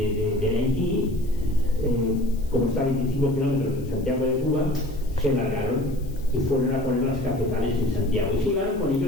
Haití, como está a 25 kilómetros de Santiago de Cuba, se largaron y fueron a poner las cafetales en Santiago y se llevaron con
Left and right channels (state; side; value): noise; left; hiss, 25 dB below the sound